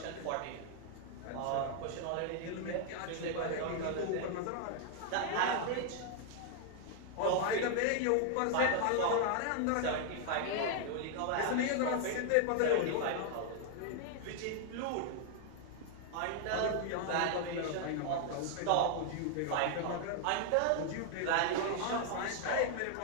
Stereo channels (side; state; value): both; different; correlation 0.00